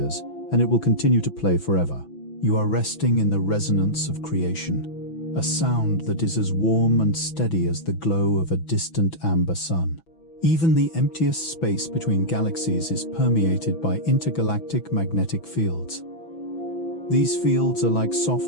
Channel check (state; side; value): late; right; 6.0 ms